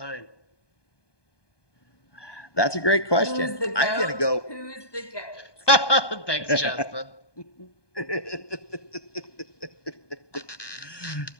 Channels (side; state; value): right; late; 1.2 ms